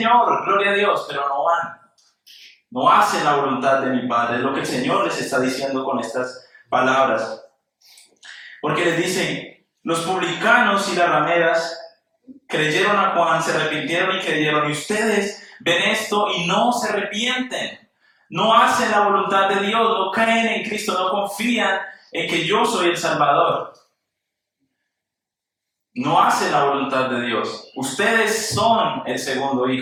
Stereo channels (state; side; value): identical; both; correlation 1.00